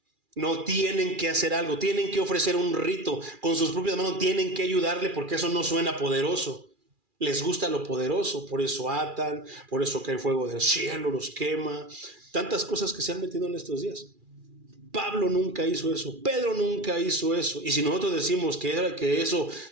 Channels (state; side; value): late; left; 2.4 ms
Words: No tienen que hacer algo, tienen que ofrecer un rito con sus propias manos, tienen que ayudarle porque eso no suena poderoso. Les gusta lo poderoso, por eso atan, por eso cae fuego del cielo, los quema. Tantas cosas que se han metido en estos días. Pablo nunca hizo eso, Pedro nunca hizo eso. Y si nosotros decimos que eso